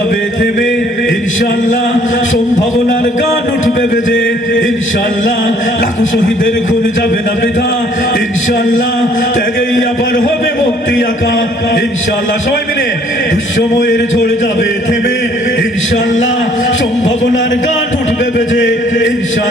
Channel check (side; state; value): both; normal; correlation 0.60